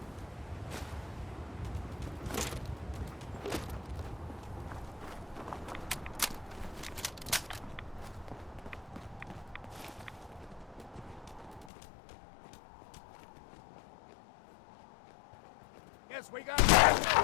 Yes, we got it.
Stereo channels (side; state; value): right; drops out; at 11.7 s